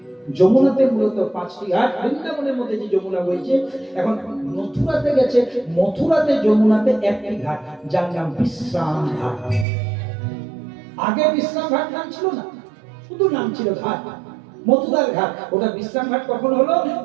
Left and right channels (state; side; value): drops out; left; at 9.7 s